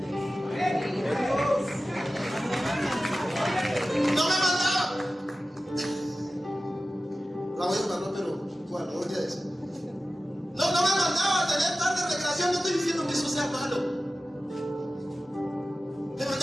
No me mandaba. La voy a mandar, pero bueno, voy a decir. No me mandaba a tener tarde de recreación. No estoy diciendo que eso sea malo. Me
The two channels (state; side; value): normal; both; correlation 0.94